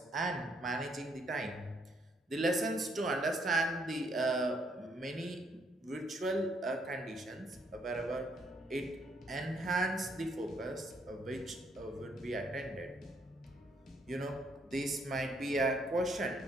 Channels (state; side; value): normal; both; correlation 0.71